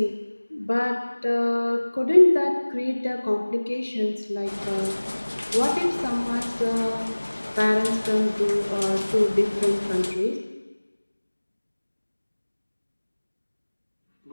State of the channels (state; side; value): inverted; both; correlation -1.00